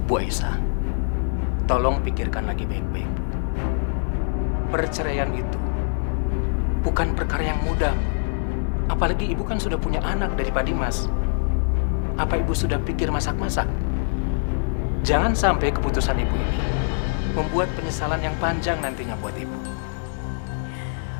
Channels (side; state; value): right; silent; digital silence